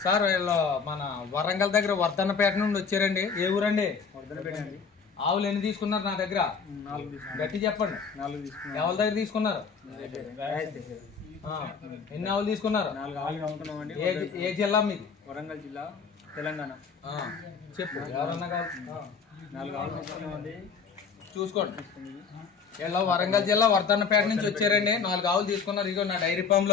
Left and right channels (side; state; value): right; quieter; 5.6 dB